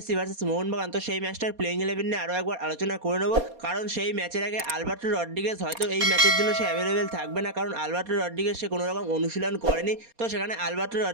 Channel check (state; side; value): late; left; 4.2 ms